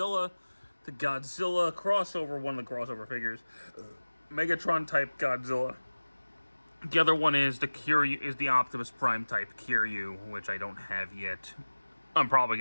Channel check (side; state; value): both; inverted; correlation -1.00